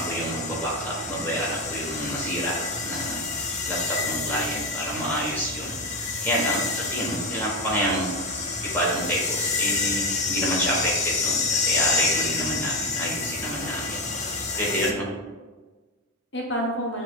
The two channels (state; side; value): normal; both; correlation 0.11